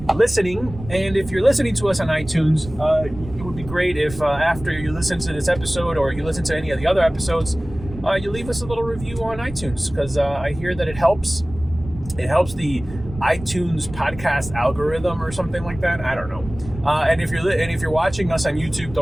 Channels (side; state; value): right; noise; rumble, 13 dB below the sound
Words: listening. And if you're listening to us on iTunes, it would be great if after you listen to this episode or you listen to any of the other episodes, you leave us a little review on iTunes, because I hear that it helps the iTunes podcast algorithm or something like that. I don't know. And if you're watching us on YouTube,